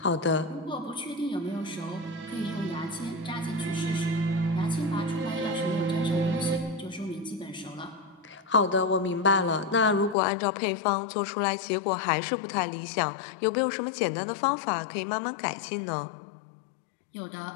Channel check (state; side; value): drops out; right; at 10.2 s